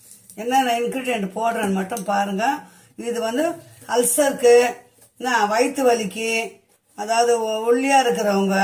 என்னென்ன இன்க்ரீடியன்ட் போடுறேன்னு மட்டும் பாருங்கள். இது வந்து அல்சருக்கு, வயிற்று வலிக்கு, அதாவது ஒல்லியாக இருக்கிறவங்க,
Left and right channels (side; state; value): both; identical; correlation 1.00